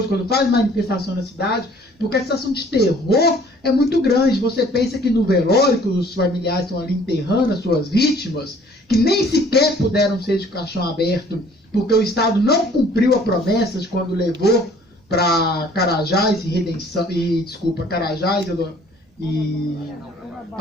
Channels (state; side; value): normal; both; correlation 0.55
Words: quando faz manifestação na cidade, porque a sensação de terror é muito grande. Você pensa que no velório, que os familiares estão ali enterrando as suas vítimas, que nem sequer puderam ser de caixão aberto, porque o Estado não cumpriu a promessa de quando levou para Carajás Carajás e